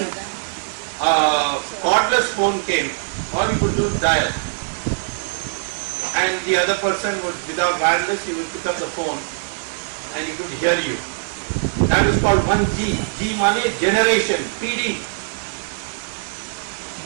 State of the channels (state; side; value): silent; left; digital silence